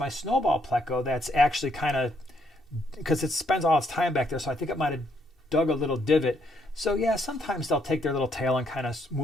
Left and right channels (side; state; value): both; normal; correlation 0.72